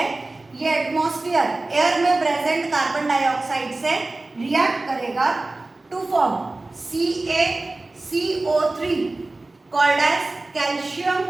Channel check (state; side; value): quieter; left; 3.1 dB